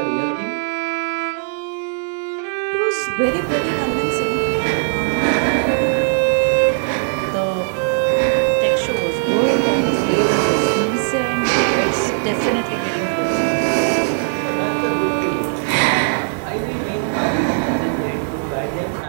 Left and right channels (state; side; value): silent; left; digital silence